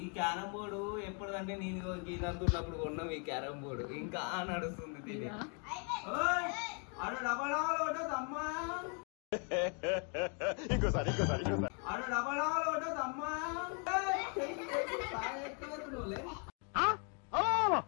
carrom board ఎప్పుడంటే నేను గీదంతున్నప్పుడు కొన్నాం ఈ క్యారం బోర్డు ఇంకా నడుస్తుంది తిని అడు డబడాలు అమ్మా ఇంకోసారి అడు డబడాలు అమ్మా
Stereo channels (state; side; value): quieter; right; 38.4 dB